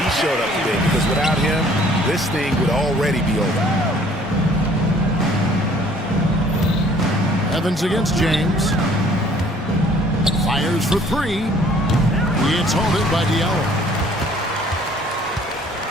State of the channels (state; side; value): normal; both; correlation 0.57